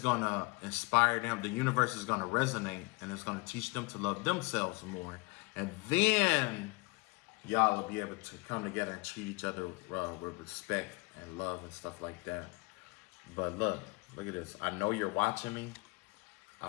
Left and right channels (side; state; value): right; quieter; 26.6 dB